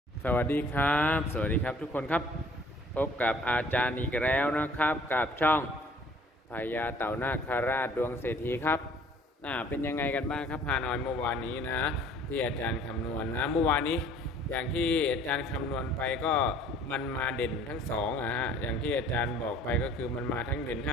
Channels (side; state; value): both; normal; correlation 0.54